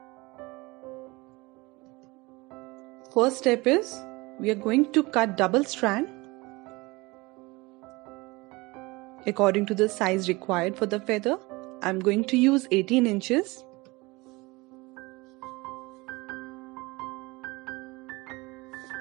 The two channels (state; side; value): quieter; left; 23.4 dB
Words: First step is we are going to cut double strand according to the size required for the feather. I'm going to use 18 inches.